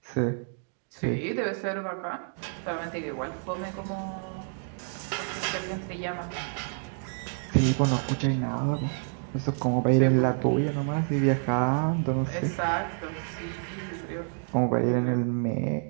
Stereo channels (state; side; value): silent; left; 56 dB below the other